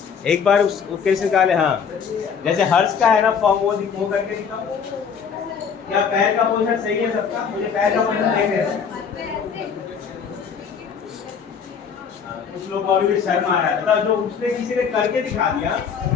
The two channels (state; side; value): quieter; right; 6.7 dB